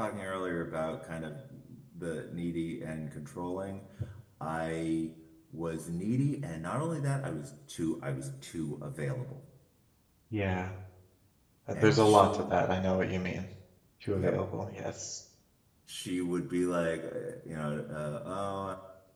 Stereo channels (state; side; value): identical; both; correlation 1.00